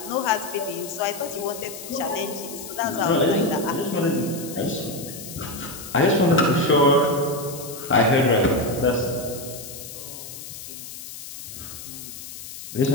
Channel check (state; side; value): noise; left; hiss, 12 dB below the sound